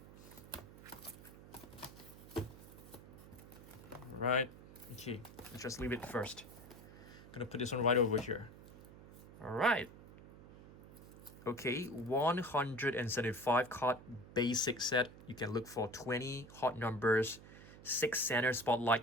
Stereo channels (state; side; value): noise; right; hum, 17 dB below the sound